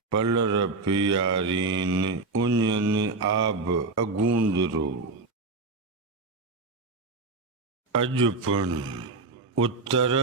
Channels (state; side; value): quieter; left; 3.6 dB